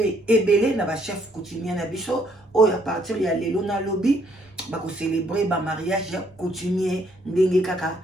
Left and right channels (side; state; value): both; normal; correlation 0.68